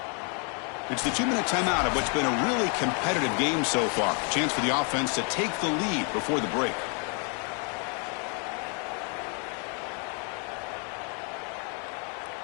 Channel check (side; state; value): right; quieter; 38.3 dB